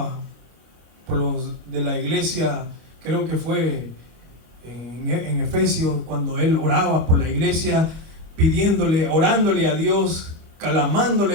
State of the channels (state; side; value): late; left; 25 ms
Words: por los de la iglesia. Creo que fue en Efesios, cuando él oraba por la iglesia, pidiéndole, orándole a Dios,